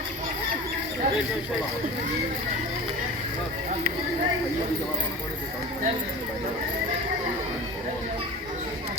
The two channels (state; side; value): normal; both; correlation 0.34